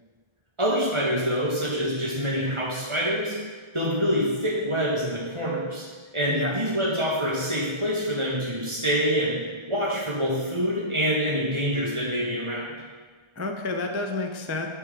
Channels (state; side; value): late; left; 1.3 ms